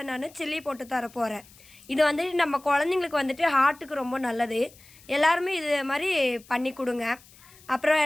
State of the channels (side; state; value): left; noise; hiss, 24 dB below the sound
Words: நான் சில்லி போட்டு தர போகிறேன். இது வந்துட்டு நம்ம குழந்தைங்களுக்கு வந்துட்டு ஹார்ட்டுக்கு ரொம்ப நல்லது. எல்லாருமே இது மாதிரி பண்ணி கொடுங்க. அப்புறம்